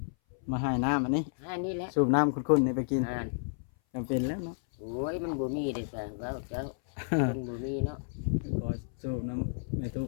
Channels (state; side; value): silent; right; 57 dB below the other